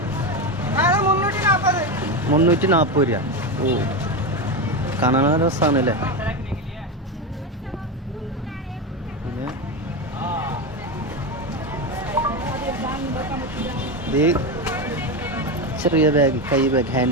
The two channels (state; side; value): normal; both; correlation 0.15